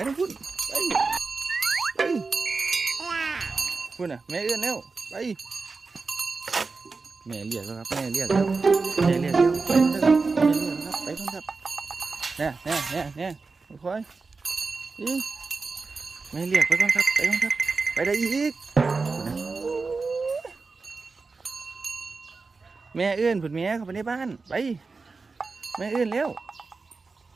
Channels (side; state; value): left; quieter; 4.2 dB